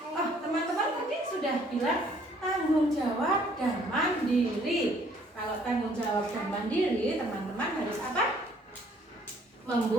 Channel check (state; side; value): normal; both; correlation 0.61